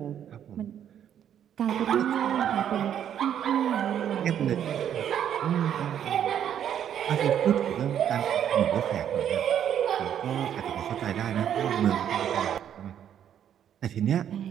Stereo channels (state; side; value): quieter; left; 9.6 dB